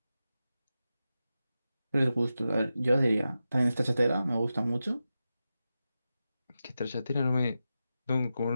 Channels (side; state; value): both; inverted; correlation -0.91